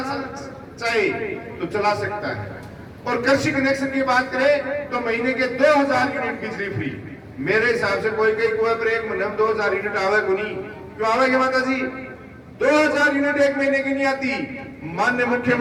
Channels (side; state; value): both; identical; correlation 1.00